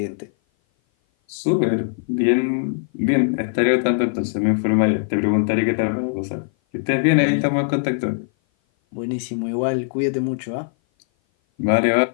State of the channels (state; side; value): silent; right; 57 dB below the other